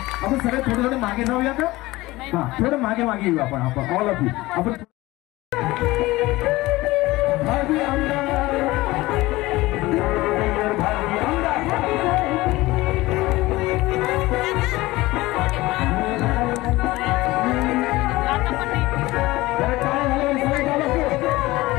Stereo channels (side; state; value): right; quieter; 19.3 dB